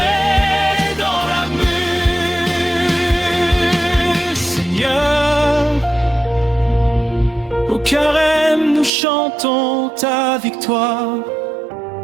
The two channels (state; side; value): drops out; left; at 8.9 s